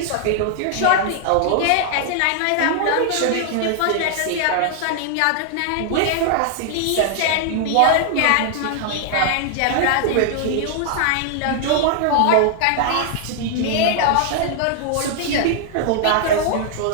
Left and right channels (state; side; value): different; both; correlation -0.01